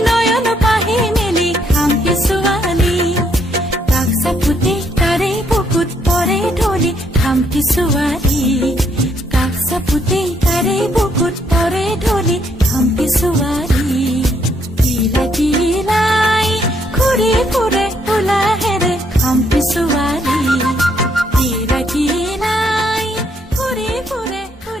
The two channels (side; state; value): both; normal; correlation 0.71